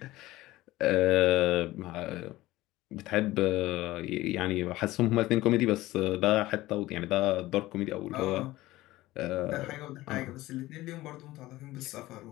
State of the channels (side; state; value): right; quieter; 17.5 dB